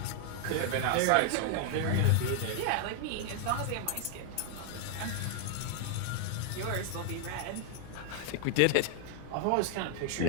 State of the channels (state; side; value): different; both; correlation 0.00